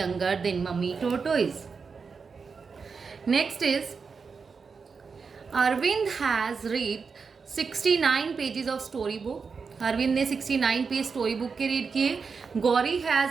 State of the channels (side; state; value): left; quieter; 5.3 dB